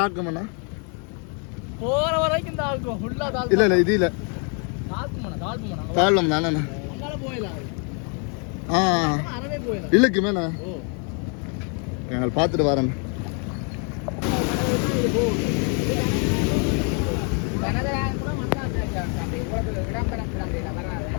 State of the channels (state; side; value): quieter; right; 38.3 dB